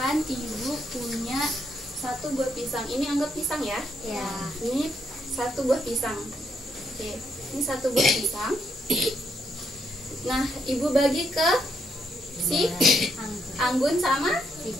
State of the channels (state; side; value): normal; both; correlation 0.76